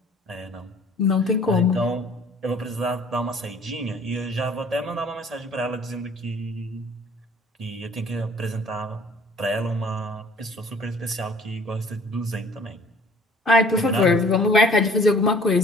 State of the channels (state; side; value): normal; both; correlation 0.53